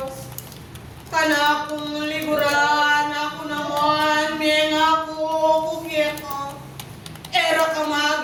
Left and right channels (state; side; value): identical; both; correlation 1.00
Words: Kana kong liguran, ako naman, menga ko kukeka. Era ka